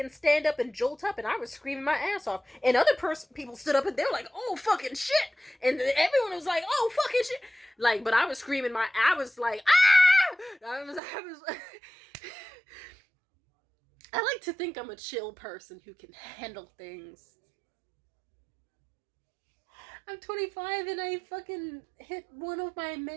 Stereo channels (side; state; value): left; drops out; at 11.0 s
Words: stand up and jolt up, and I was screaming my ass off. And other people stood up and they were like, oh, fucking shit. And everyone was like, oh, fucking shit. Like, but I was screaming I was like, ah! I was I like to think I'm a chill person who can handle things. I'm 25 and I fucking hit one of my